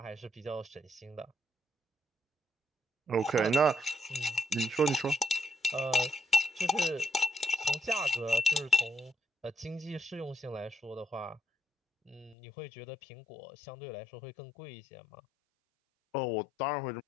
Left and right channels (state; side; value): drops out; right; at 12.4 s